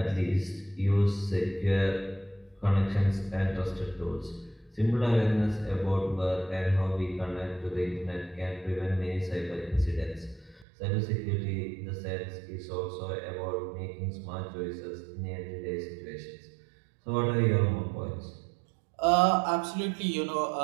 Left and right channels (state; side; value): drops out; left; at 10.7 s